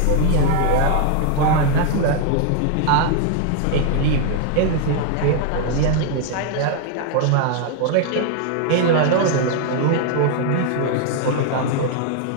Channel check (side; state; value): both; different; correlation 0.00